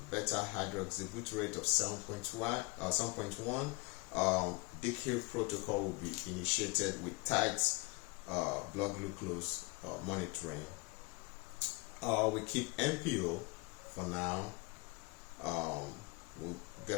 beta hydroxybutyrate of 7.1, DKIR protocol will be initiated with tight blood glucose monitoring. We keep NPO for now. We'll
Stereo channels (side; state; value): right; quieter; 26.9 dB